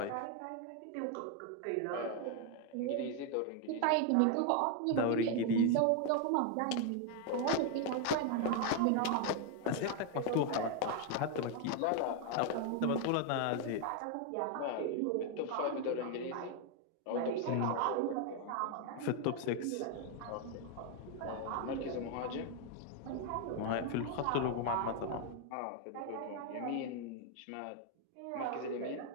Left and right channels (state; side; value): different; both; correlation 0.00